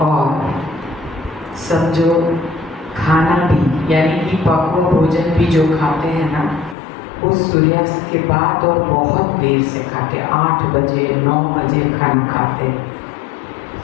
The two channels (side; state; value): right; drops out; at 6.8 s